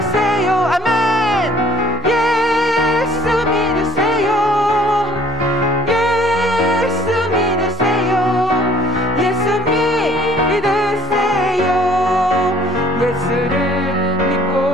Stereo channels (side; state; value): both; normal; correlation 0.55